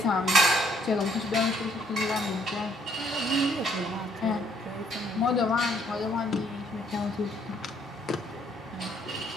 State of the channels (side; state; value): both; normal; correlation 0.67